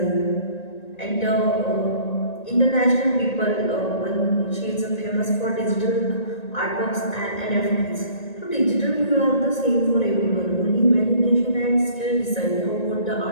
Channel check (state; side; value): late; right; 1.9 ms